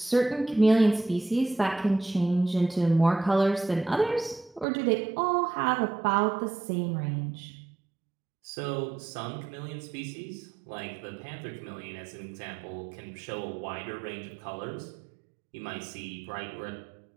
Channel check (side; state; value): left; drops out; at 4.7 s